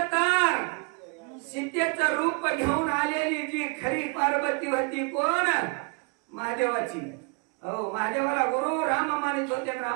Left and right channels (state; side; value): quieter; left; 32.8 dB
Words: तर सीतेचं रूप घेऊन आलेली जी खरी पार्वती होती कोण? महादेवाची. हो महादेवाला गुरु राम मानित होते,